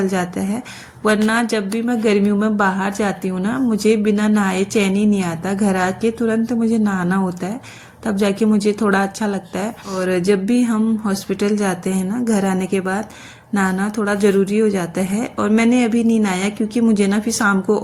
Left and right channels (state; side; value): identical; both; correlation 1.00